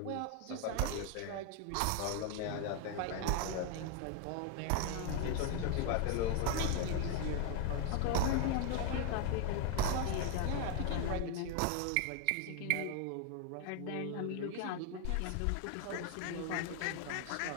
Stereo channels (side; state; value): both; different; correlation 0.01